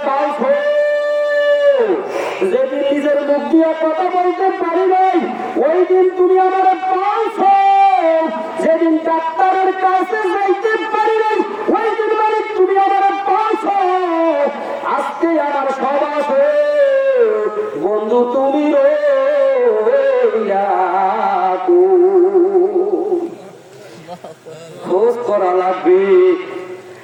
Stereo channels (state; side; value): identical; both; correlation 1.00